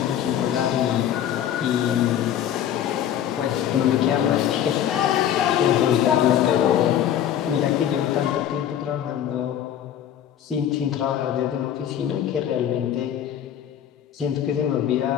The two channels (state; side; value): quieter; right; 10.3 dB